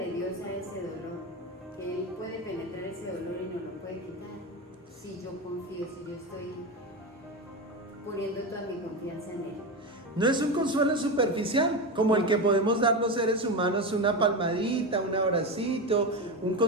Dios a ese dolor, que Él puede penetrar ese dolor y no lo puede quitar. Si yo confío, si yo estoy poniendo toda mi confianza en Él. No es un consuelo superficial, como el que podemos dar los seres humanos, una palmadita, un abracito, un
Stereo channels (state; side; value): normal; both; correlation 0.18